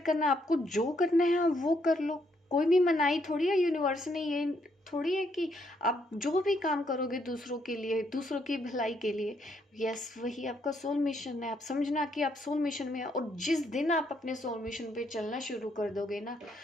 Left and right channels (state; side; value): normal; both; correlation 0.73